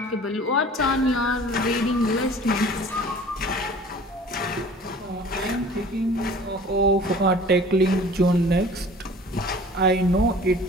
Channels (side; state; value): both; normal; correlation 0.46